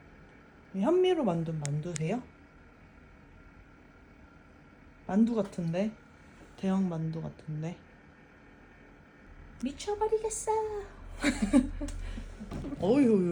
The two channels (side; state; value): both; identical; correlation 1.00